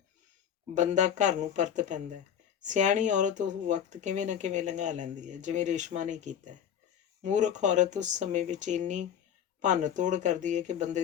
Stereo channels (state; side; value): quieter; right; 8.9 dB